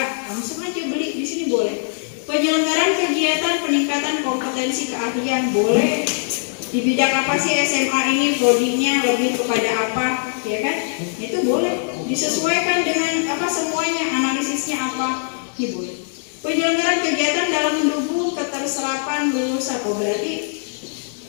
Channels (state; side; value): silent; right; digital silence